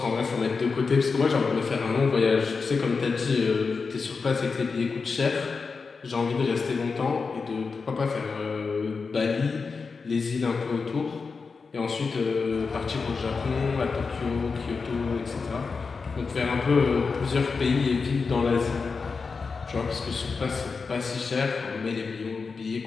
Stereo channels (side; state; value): right; quieter; 4.8 dB